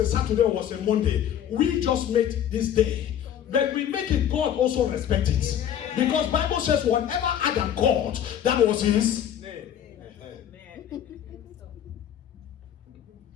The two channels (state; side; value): quieter; right; 9.9 dB